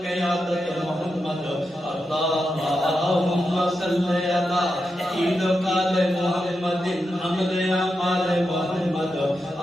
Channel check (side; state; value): both; normal; correlation 0.87